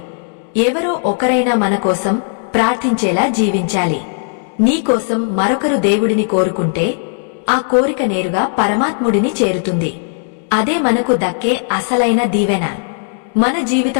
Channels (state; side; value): silent; right; digital silence